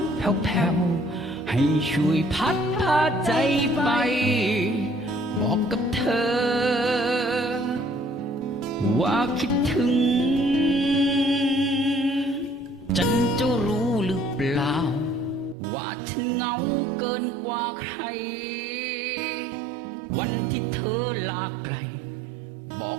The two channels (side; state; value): left; drops out; at 15.6 s